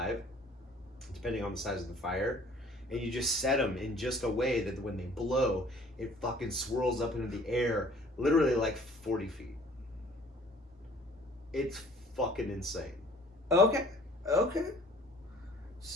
depending on the size of the fire. And you just set them in just a way that when they blow, it fucking swirls up into the air, literally like 40 feet. It's fucking insane. Okay.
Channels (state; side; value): normal; both; correlation 0.53